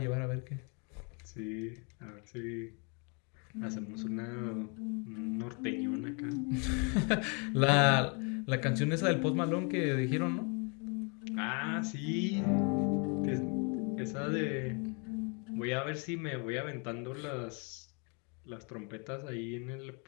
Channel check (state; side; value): quieter; right; 35.3 dB